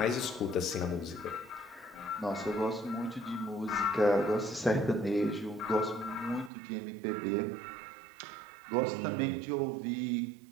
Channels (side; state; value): left; drops out; at 6.5 s